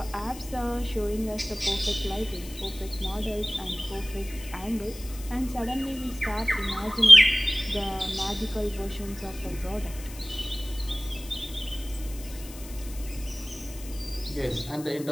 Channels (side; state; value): left; noise; hiss, 16 dB below the sound